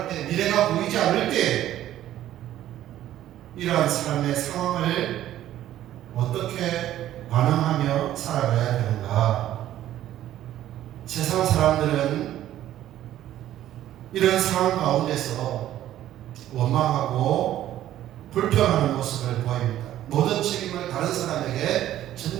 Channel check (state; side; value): quieter; left; 12.8 dB